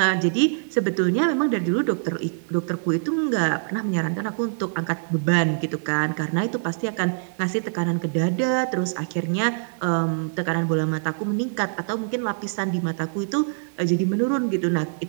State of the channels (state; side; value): silent; left; digital silence